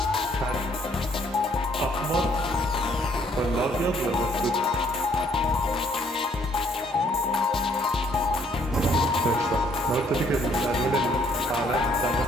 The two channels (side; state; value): both; normal; correlation 0.65